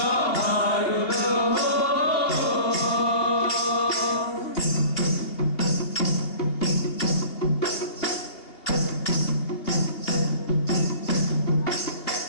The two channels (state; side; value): late; right; 2.7 ms